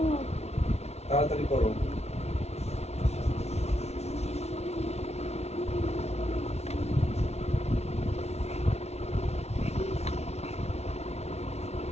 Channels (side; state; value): right; late; 0.31 ms